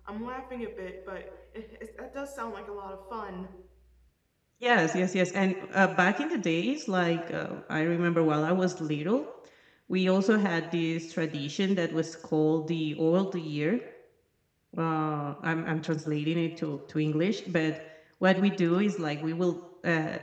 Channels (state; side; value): identical; both; correlation 1.00